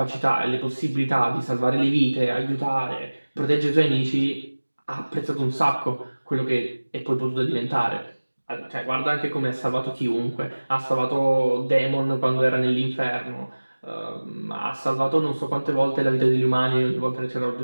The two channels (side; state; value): both; inverted; correlation -1.00